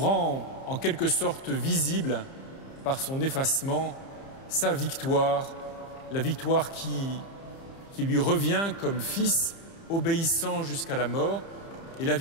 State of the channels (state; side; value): late; right; 30 ms